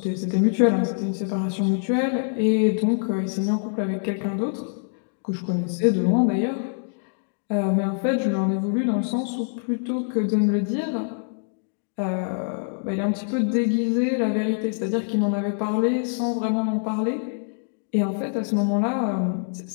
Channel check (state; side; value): silent; right; digital silence